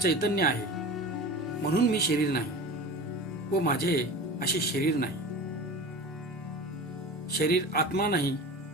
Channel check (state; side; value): normal; both; correlation 0.33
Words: आहे म्हणून मी शरीर नाही व माझे असे शरीर नाही. शरीर आत्मा नाही